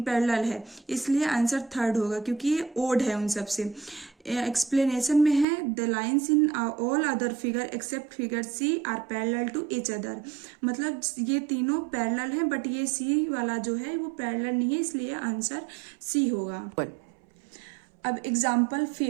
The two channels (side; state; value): left; drops out; at 5.5 s